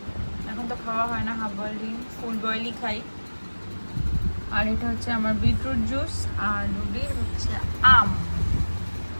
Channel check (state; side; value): inverted; both; correlation -1.00